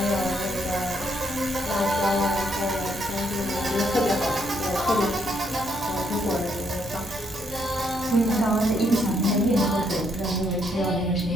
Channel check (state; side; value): normal; both; correlation 0.74